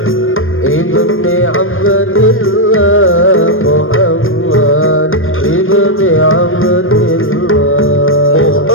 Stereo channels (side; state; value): right; late; 0.59 ms